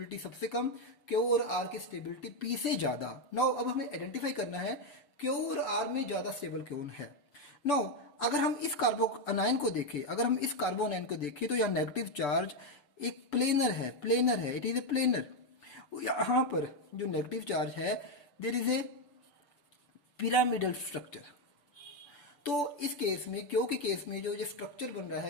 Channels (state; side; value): late; right; 6.8 ms